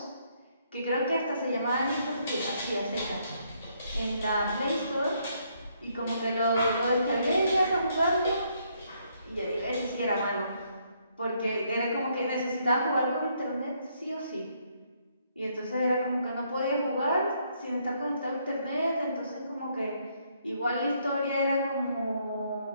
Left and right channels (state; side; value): inverted; both; correlation -0.72